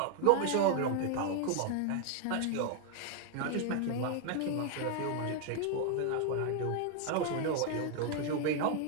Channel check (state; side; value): different; both; correlation 0.00